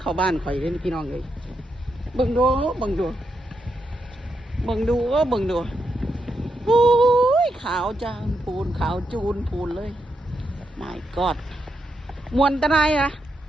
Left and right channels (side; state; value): both; normal; correlation 0.83